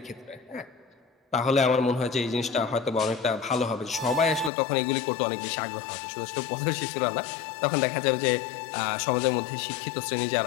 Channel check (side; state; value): right; drops out; at 4.5 s